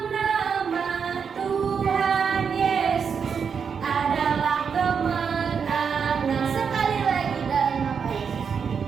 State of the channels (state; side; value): quieter; left; 6.4 dB